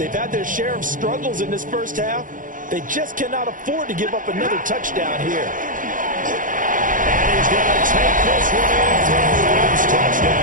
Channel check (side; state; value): left; late; 0.39 ms